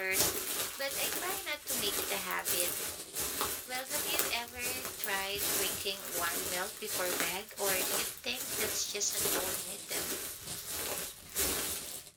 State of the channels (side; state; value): both; identical; correlation 1.00